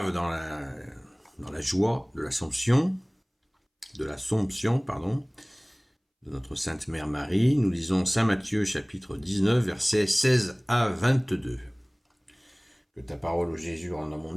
dans la joie de l'Assomption, de notre Sainte Mère Marie. Nous lisons Saint Matthieu chapitre 19, versets 16 à 22. Que ta parole, ô Jésus, rentre dans mon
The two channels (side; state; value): both; identical; correlation 1.00